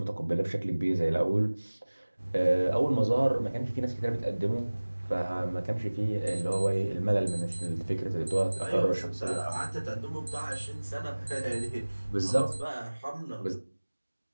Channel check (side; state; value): both; inverted; correlation -1.00